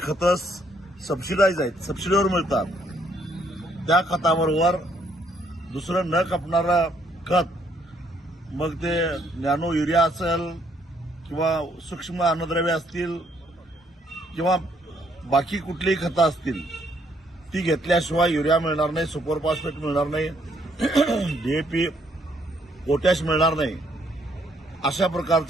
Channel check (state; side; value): normal; both; correlation 0.69